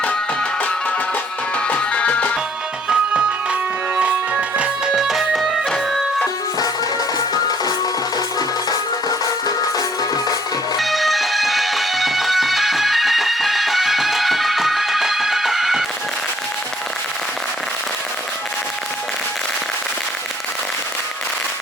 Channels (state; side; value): normal; both; correlation 0.62